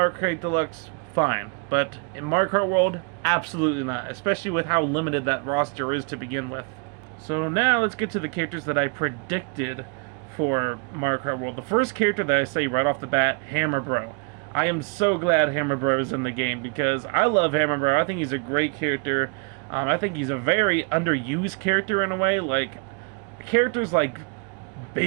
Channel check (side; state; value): left; quieter; 34.7 dB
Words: Kart Deluxe, fine. But in Mario Kart World, absolutely not. Especially with how limited that roster is to begin with. So now let's get to the characters that I predicted for Mario Kart World. The first character that I say right off the bat, Hammer Bro. I am so glad Hammer Bro is in the game because I love Hammer Bro. I think he's a great character. I think he's a very underused character in a way. Like, characters like